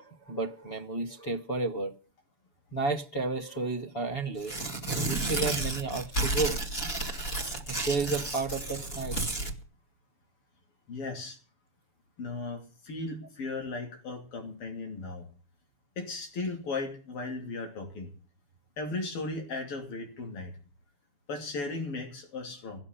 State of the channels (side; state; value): right; late; 7.0 ms